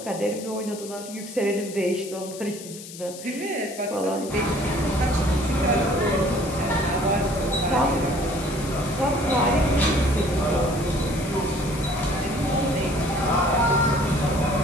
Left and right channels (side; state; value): left; noise; hiss, 14 dB below the sound